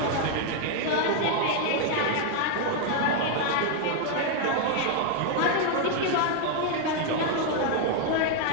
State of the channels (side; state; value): both; different; correlation 0.00